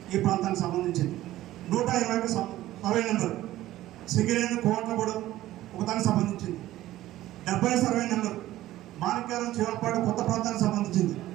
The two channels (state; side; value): quieter; left; 15.1 dB